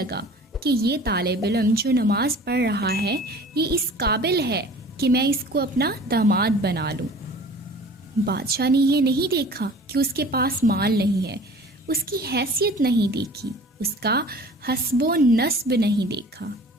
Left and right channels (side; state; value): both; normal; correlation 0.45